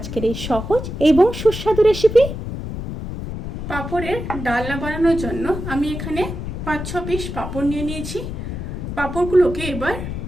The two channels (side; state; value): left; noise; rumble, 6 dB below the sound